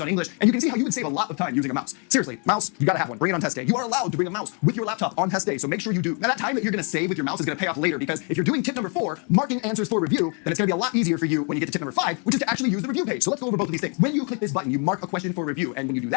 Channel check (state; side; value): quieter; right; 37.7 dB